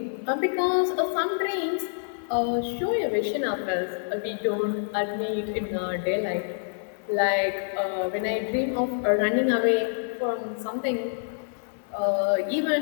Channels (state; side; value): silent; right; digital silence